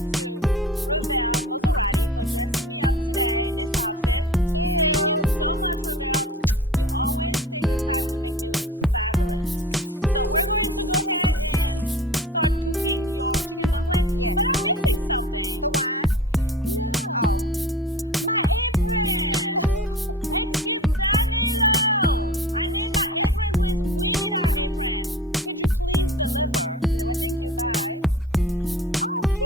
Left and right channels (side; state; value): both; normal; correlation 0.39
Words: to Ravel Maserati for dressing me up today in this outfit. Cute. Thank you so much, Ravel. You always take the time to make me look fabulous. So we're going to go ahead and start cooking your chicken dumpling. Yes. But I'm missing something. The wine? No. Oh. My apron. Excuse Danilo. I need my apron, please. We need our apron. Could you please deliver? Well, thank you. Bye. Oh,